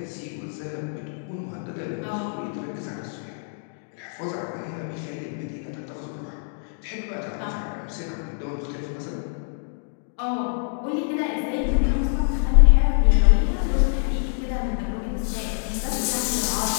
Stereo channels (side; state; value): right; silent; digital silence